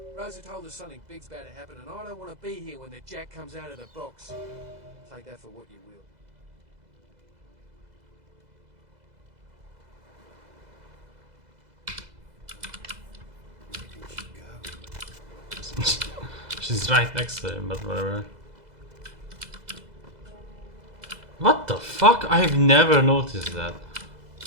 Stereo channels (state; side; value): late; left; 2.0 ms